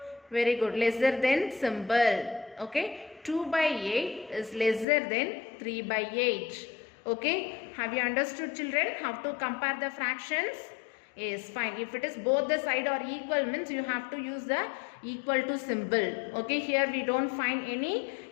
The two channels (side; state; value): right; drops out; at 4.9 s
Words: Very good, lesser than symbol. Okay, 2 by 8 is lesser than 3 by 8. Okay, have you understood children how to compare the fractions? Yes, fine. If it is both the side are equal means you have to use the equal to symbol. Okay, here we don't find any